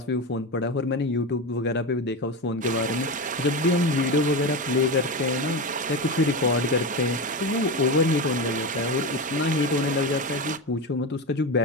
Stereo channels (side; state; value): both; normal; correlation 0.20